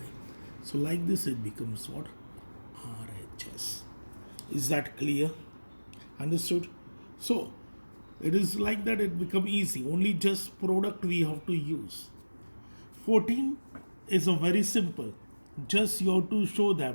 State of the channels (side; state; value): both; inverted; correlation -1.00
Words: So like this it becomes what? RHS. Is that clear? Understood? So it is like that, it become easy. Only just product we have to use. 14 is a very simple. Just you have to show